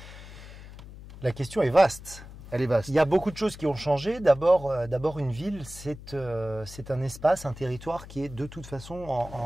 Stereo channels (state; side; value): noise; left; hum, 15 dB below the sound